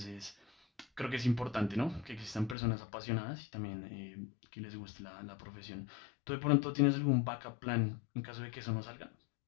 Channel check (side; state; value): right; drops out; at 2.6 s